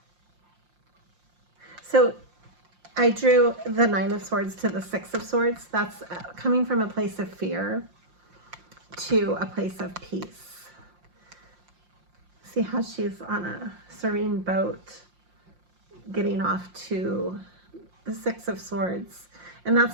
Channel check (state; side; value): late; left; 5.7 ms